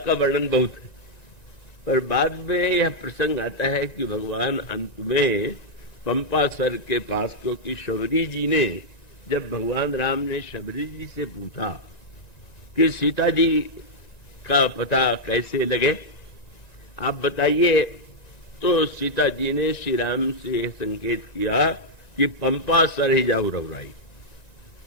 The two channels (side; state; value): right; late; 1.9 ms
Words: का वर्णन बहुत है, पर बाद में यह प्रसंग आता है कि भगवान अंत में पंपासर के पास, क्योंकि शबरी जी ने, जब भगवान राम ने शबरी जी से पूछा कि सीता जी का पता कैसे लगे, आप बताइए, तो सीता जी ने श्री राम से संकेत किया कि पंपासर ही जाओ रघुराई,